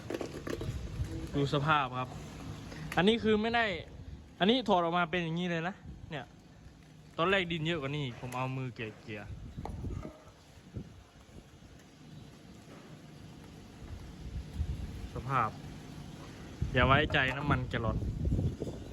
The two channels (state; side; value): identical; both; correlation 1.00